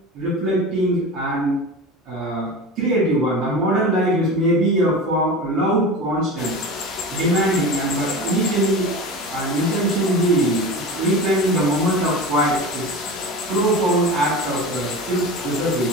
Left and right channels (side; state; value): both; normal; correlation 0.30